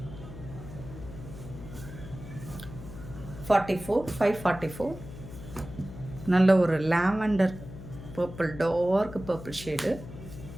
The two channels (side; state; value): left; noise; hum, 13 dB below the sound